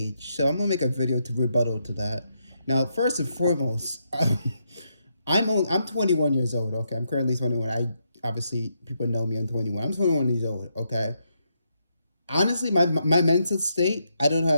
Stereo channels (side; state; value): both; inverted; correlation -0.80